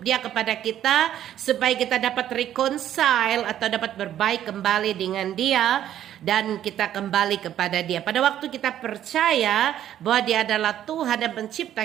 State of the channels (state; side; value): quieter; left; 11.3 dB